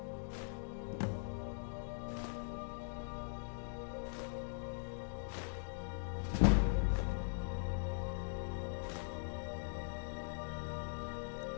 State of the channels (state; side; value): silent; right; digital silence